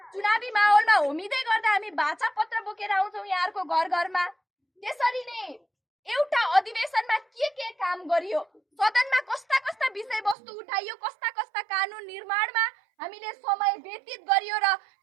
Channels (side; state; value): left; drops out; at 10.4 s